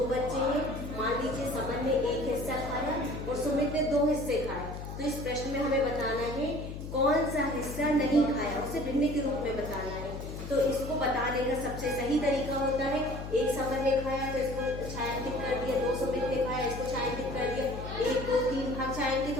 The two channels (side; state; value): left; noise; hum, 8 dB below the sound